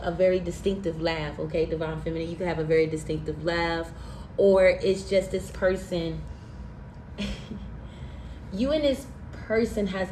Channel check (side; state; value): both; identical; correlation 1.00